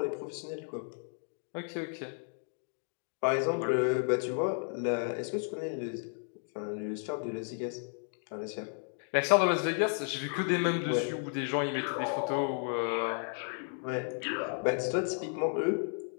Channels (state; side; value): silent; right; 56 dB below the other